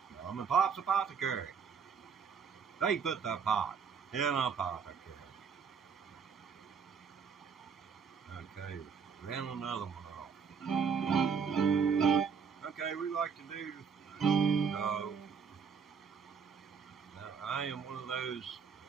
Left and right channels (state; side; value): quieter; left; 6.3 dB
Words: Mom and Pop's Apothecary. They put the pot in a apothecary. Okay, ran another one off. Okay, we like to do. Now, I am one of those